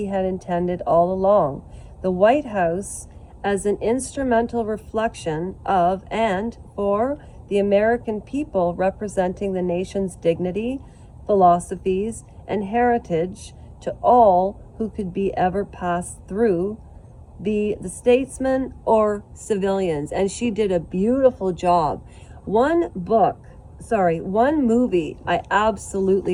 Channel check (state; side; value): identical; both; correlation 1.00